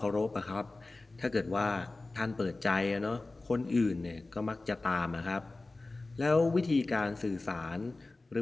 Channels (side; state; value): right; quieter; 3.2 dB